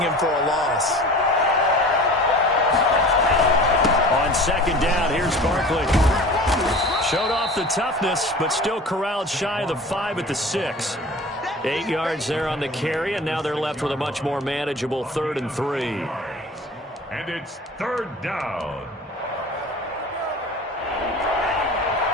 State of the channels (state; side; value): normal; both; correlation 0.40